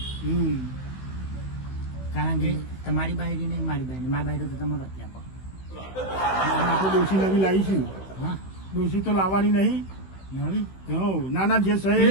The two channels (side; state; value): right; late; 16 ms